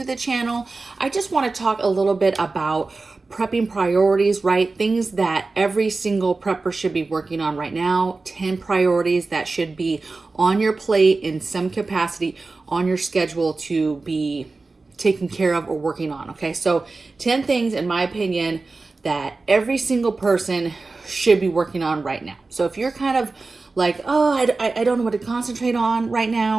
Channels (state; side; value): quieter; left; 3.7 dB